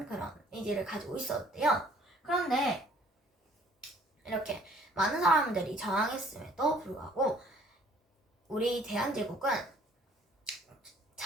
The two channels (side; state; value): both; normal; correlation 0.57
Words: 그런 의지를 가지고 있었는데요. 그런데 이렇게 많은 사람들이 저항했음에도 불구하고 우리 대한제국은